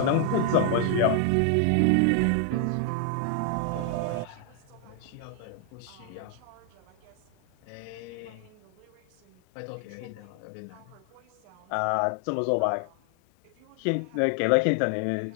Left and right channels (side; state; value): both; different; correlation 0.00